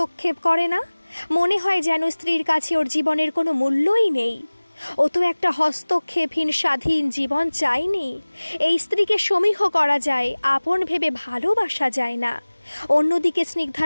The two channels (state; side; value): inverted; both; correlation -1.00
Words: করে না। মনে হয় যেন স্ত্রীর কাছে ওর জীবনের কোনো মূল্যই নেই। ও তো একটা হস্তক্ষেপহীন স্বাধীন জীবন চায়নি। এই স্ত্রীকে সমীহ করা যায়, আপন ভেবে ভালোবাসা যায় না। অন্যদিকে